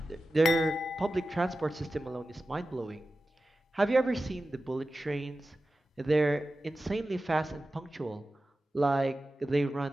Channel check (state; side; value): normal; both; correlation 0.94